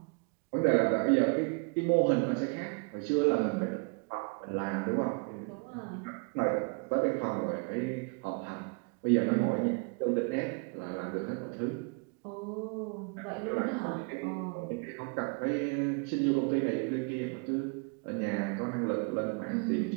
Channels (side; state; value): left; quieter; 33.4 dB